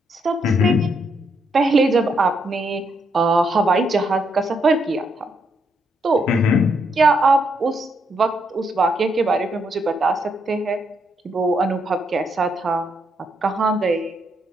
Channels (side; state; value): both; normal; correlation 0.77